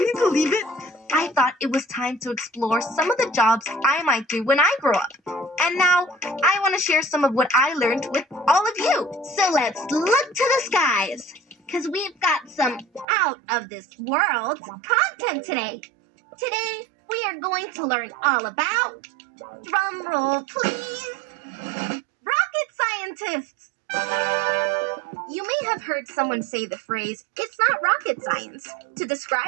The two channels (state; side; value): drops out; left; at 13.1 s